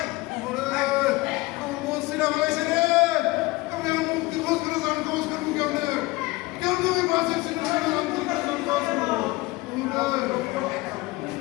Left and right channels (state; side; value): quieter; right; 21.3 dB